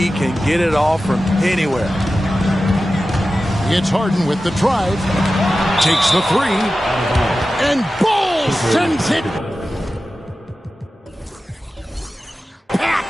can get it off from anywhere. It's Harden with the drive. Takes the three. And Ball sends it back.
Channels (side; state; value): both; normal; correlation 0.94